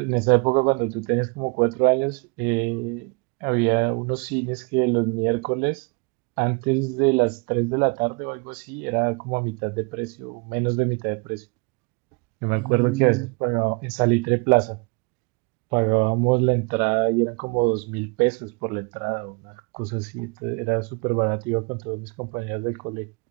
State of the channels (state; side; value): quieter; left; 30.8 dB